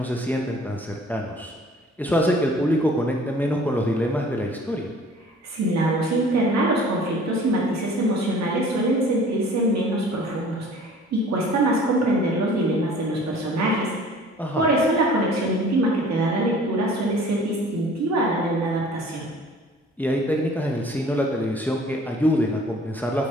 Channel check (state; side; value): normal; both; correlation 0.49